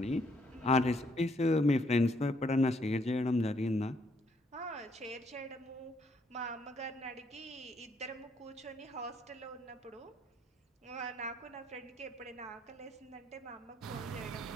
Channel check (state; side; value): normal; both; correlation 0.70